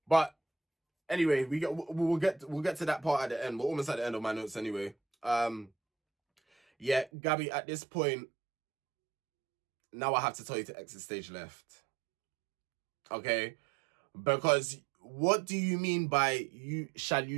But anyway, we'll get to that part at the end. We're almost at the end of my notes anyway. Yeah, Gabby, at this point, now I have to tell you to exit stage left. Okay? Because what do you mean by shall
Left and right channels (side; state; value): left; drops out; at 7.1 s